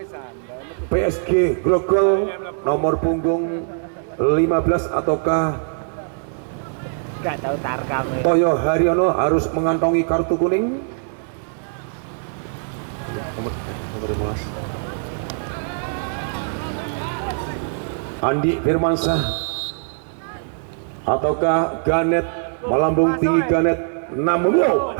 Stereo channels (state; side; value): silent; left; digital silence